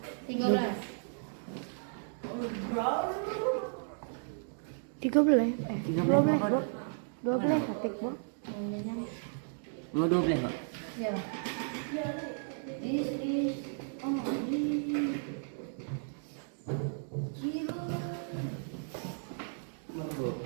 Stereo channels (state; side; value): silent; left; digital silence